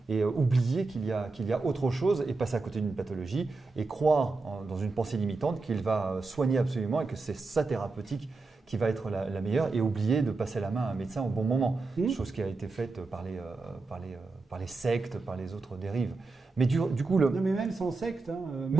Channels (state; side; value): quieter; left; 3.7 dB